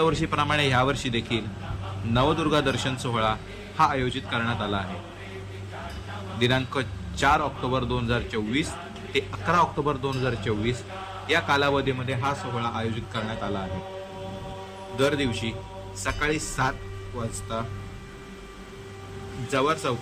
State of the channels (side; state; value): both; identical; correlation 1.00